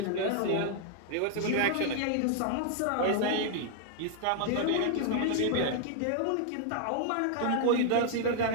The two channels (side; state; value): both; different; correlation -0.01